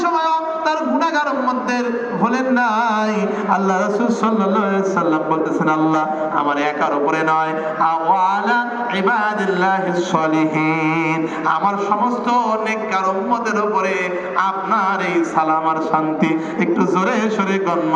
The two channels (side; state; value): both; identical; correlation 1.00